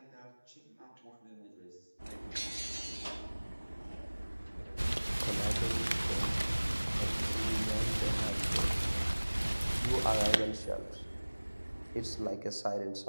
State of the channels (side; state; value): both; inverted; correlation -1.00